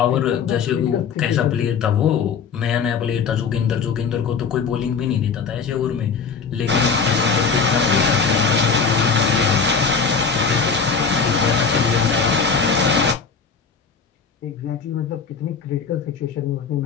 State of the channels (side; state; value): right; quieter; 5.6 dB